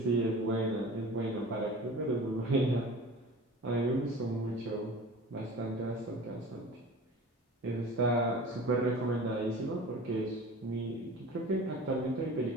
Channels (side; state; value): both; normal; correlation 0.39